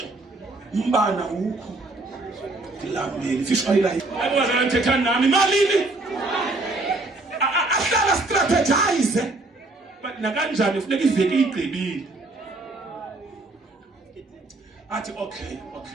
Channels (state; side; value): quieter; left; 3.0 dB